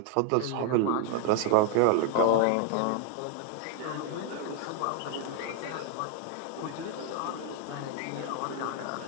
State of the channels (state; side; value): different; both; correlation 0.01